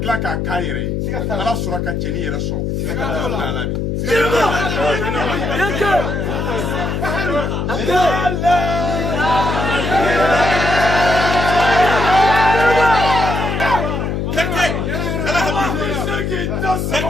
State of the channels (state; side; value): noise; left; hum, 1 dB below the sound